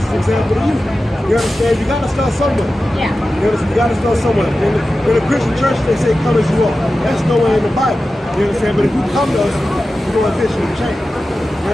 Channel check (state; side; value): normal; both; correlation 0.94